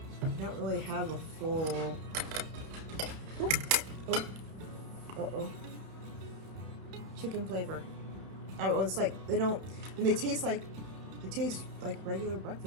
don't really have a full, chicken flavor. Oh, it's like, and they taste like regular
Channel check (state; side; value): late; left; 30 ms